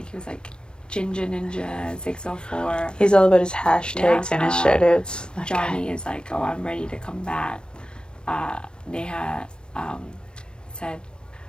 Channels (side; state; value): right; late; 0.053 ms